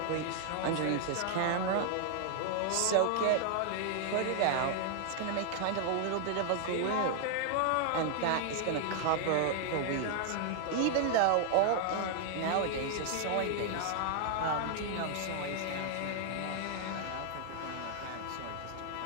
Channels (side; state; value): both; different; correlation 0.00